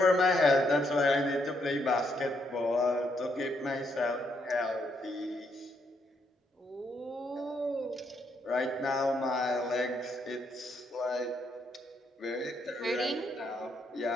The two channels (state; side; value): normal; both; correlation 0.75